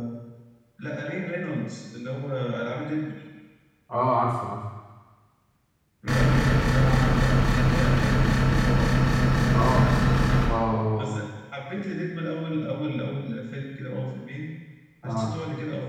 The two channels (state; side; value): identical; both; correlation 1.00